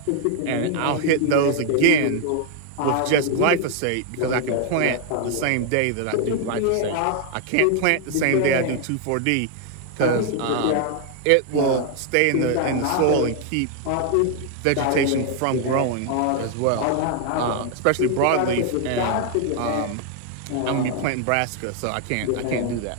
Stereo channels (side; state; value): both; different; correlation 0.00